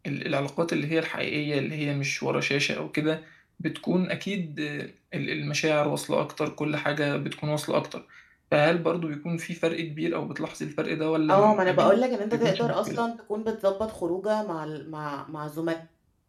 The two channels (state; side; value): identical; both; correlation 1.00